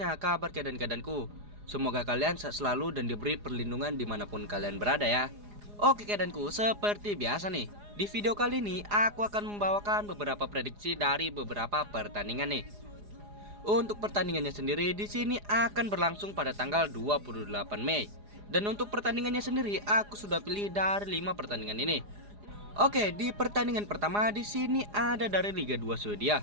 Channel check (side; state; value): left; late; 4.9 ms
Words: kabar kedanku? Semoga kalian sehat selalu dan diberi perlindungan dimanapun kalian berada ya. Oke kedanku, seperti biasa nih, di video kali ini aku akan membawakan beberapa prediksi dari beberapa pertandingan nih. Untuk pertandingannya sendiri di sini akan berlangsung pada tanggal 28 Mei. Dan untuk pertandingannya sendiri aku sudah pilih dari 5 pertandingan ini. Oke, di pertandingan pertama di sini ada dari Liga 2